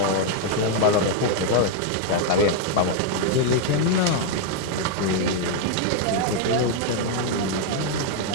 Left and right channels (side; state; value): both; different; correlation 0.00